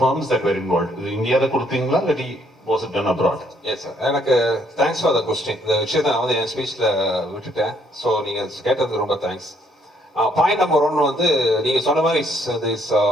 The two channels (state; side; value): normal; both; correlation 0.68